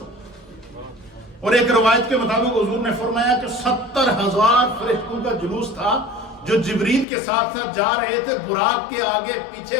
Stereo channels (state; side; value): drops out; right; at 7.1 s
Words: اور ایک روایت کے مطابق حضور نے فرمایا کہ 70,000 فرشتوں کا جلوس تھا جو جبریل کے ساتھ جا رہے تھے. براق کے آگے پیچھے